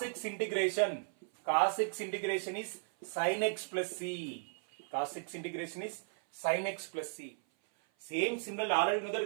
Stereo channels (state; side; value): silent; left; 54 dB below the other